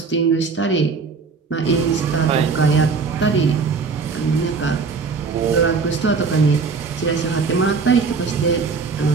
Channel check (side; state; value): left; quieter; 4.9 dB